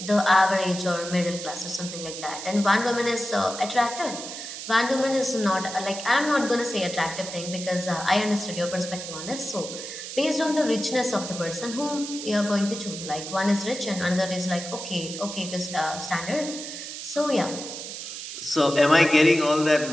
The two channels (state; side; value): noise; right; hiss, 9 dB below the sound